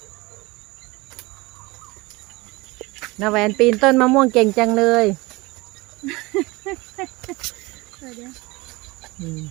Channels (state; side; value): quieter; left; 23.1 dB